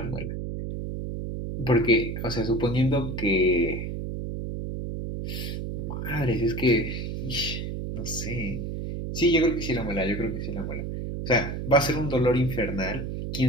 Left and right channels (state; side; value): noise; right; hum, 4 dB below the sound